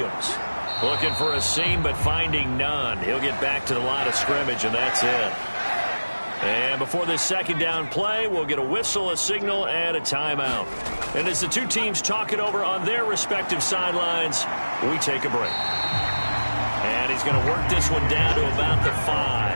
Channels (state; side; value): inverted; both; correlation -1.00